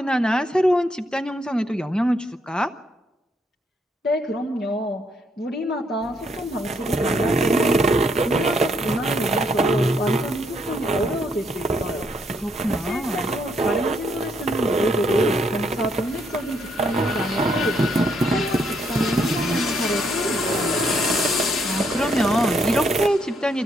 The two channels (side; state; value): both; normal; correlation 0.73